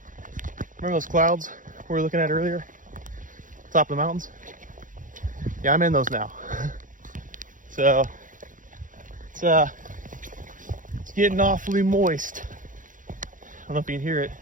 Remember those clouds we were looking at earlier? Top of the mountains? Yeah, I'm in those now. So it's getting awfully moist. I don't know if you can hear it,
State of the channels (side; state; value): left; late; 0.38 ms